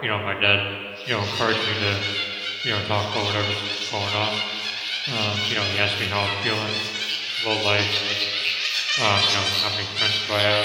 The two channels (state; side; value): identical; both; correlation 1.00